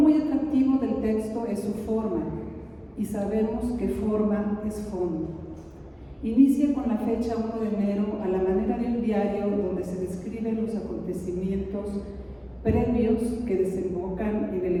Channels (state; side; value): identical; both; correlation 1.00